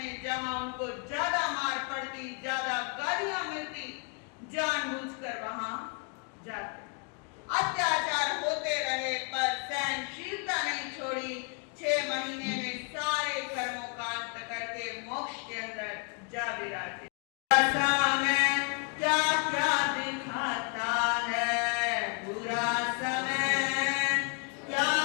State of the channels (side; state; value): right; quieter; 37.3 dB